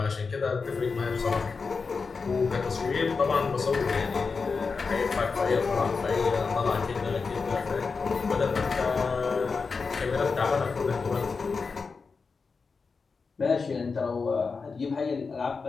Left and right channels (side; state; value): right; quieter; 4.8 dB